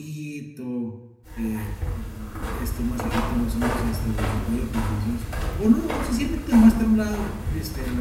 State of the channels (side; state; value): both; identical; correlation 1.00